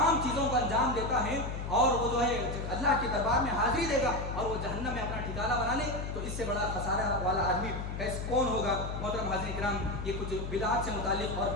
چیزوں کو انجام دیتا ہے اور وہ جو ہے اللہ کے دربار میں حاضری دے گا اور وہ جہنم میں اپنا ٹھکانہ بنا لے، تو اس سے بڑا خسارہ والا آدمی کون ہوگا؟ محترم حاضرین کرام، یہ کچھ بدعات سے متعلق اور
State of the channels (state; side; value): noise; left; hum, 5 dB below the sound